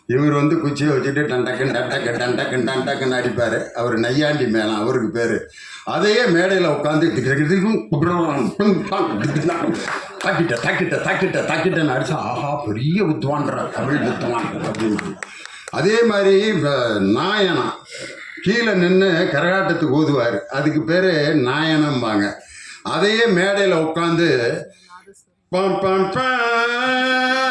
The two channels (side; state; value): both; identical; correlation 1.00